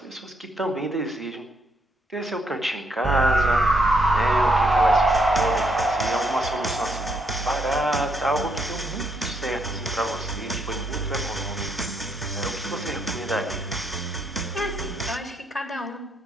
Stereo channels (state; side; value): normal; both; correlation 0.75